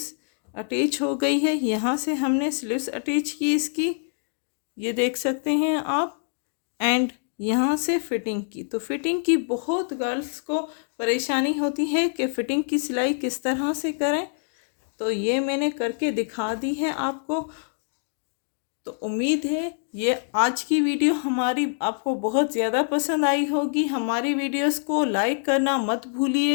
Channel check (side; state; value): right; silent; digital silence